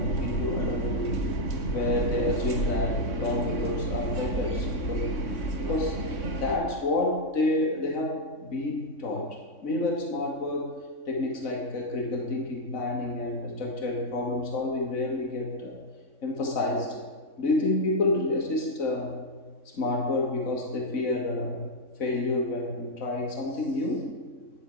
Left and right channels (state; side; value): late; right; 3.6 ms